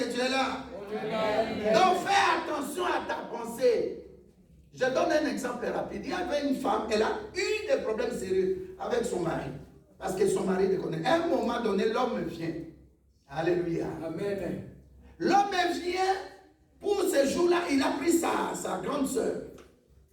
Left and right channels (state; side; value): identical; both; correlation 1.00